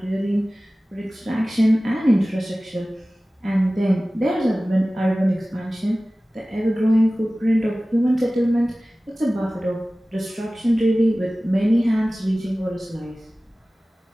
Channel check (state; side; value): normal; both; correlation 0.97